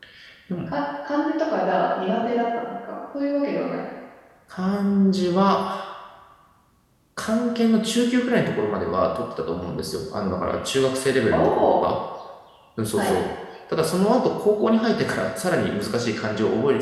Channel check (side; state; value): both; identical; correlation 1.00